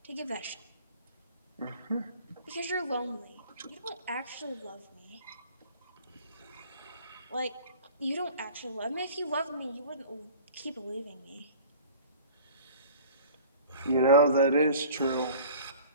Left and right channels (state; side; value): inverted; both; correlation -0.45